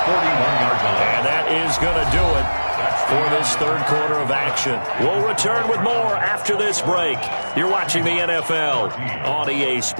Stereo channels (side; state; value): both; inverted; correlation -1.00